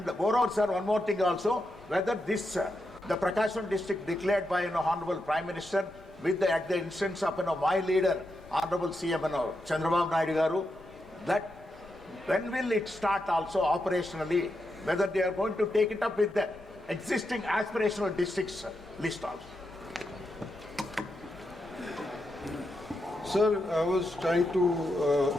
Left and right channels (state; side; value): normal; both; correlation 0.85